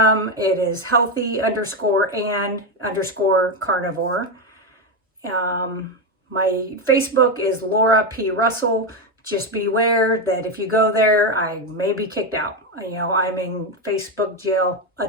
It is healthy_and_carnivore. My Facebook is Laura P. Russell. Just beware that if you go there, I may be kicked out. You know, I'm in Facebook jail a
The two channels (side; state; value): both; normal; correlation 0.09